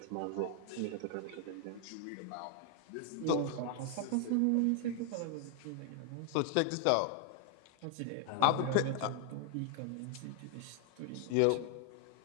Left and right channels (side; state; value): both; different; correlation 0.00